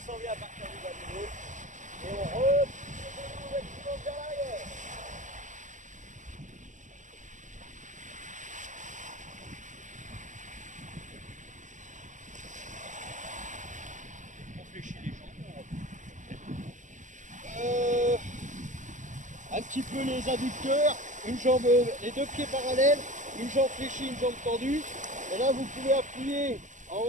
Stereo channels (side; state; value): left; late; 0.36 ms